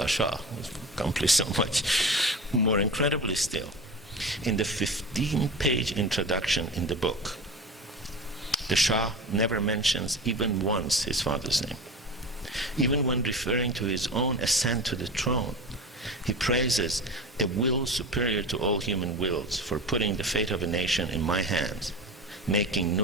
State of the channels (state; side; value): normal; both; correlation 0.31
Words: Shah accomplished so much. More incredibly still, in the 15-page introduction in the book, the Shah never mentions even once his father's name. Even when referring to his own ascent to the throne, he praises a will superior to all human wills for putting the fate of a nation in my hands, making